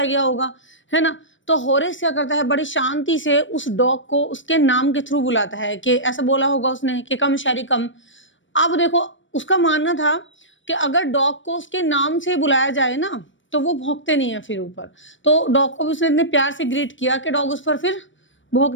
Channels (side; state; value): right; late; 0.56 ms